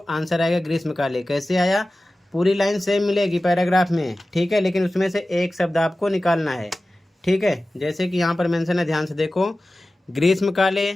आएगा ग्रीष्मकाले। कैसे आया? पूरी लाइन सेम मिलेगी पैराग्राफ में, ठीक है, लेकिन उसमें से एक शब्द आपको निकालना है, ठीक है। जैसे कि यहाँ पर मेंशन है, ध्यान से देखो, ग्रीष्मकाले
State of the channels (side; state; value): both; normal; correlation 0.96